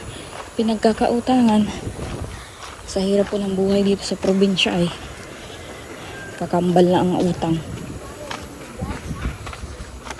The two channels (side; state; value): both; identical; correlation 1.00